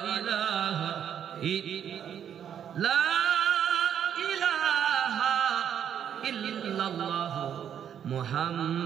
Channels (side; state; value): left; quieter; 9.0 dB